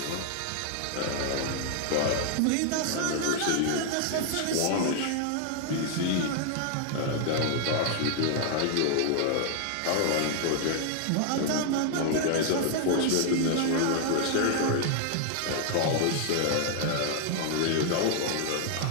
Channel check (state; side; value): different; both; correlation 0.00